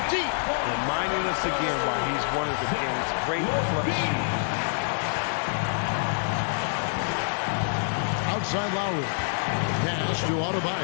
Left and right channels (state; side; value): silent; right; digital silence